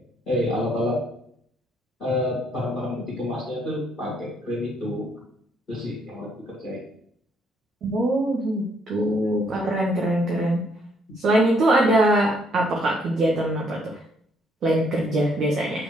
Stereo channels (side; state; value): both; normal; correlation 0.69